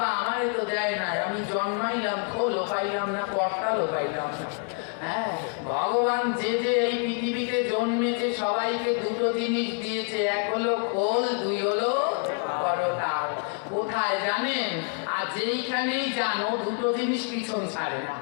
আমারে তো দেয় না আমি জন্মাইলাম খোলও পাইলাম না করতালও পাইলাম না হ্যাঁ ভগবান যে যে এই পৃথিবীতে জন্মেছে সবাইকে দুটো জিনিস দিয়েছে এক হলো খোল দুই হলো করতাল কোথায় জানেন আর যেইখানেই যান ও দুটো জিনিস পিছন ছাড়ে না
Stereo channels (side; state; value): right; quieter; 39.7 dB